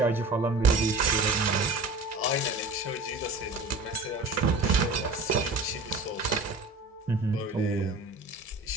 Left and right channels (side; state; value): left; quieter; 3.1 dB